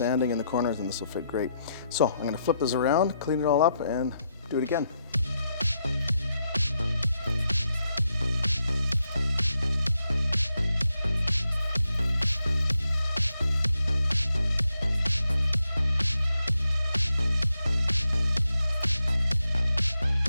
in the corners and this will fit great. So I'm gonna flip this around, clean it all up, and do it again.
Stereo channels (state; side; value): inverted; both; correlation -0.82